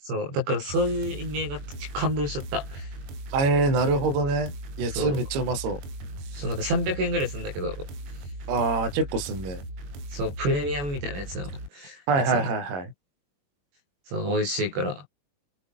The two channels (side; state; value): left; late; 21 ms